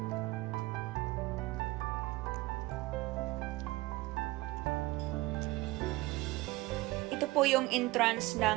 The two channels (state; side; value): quieter; left; 20.4 dB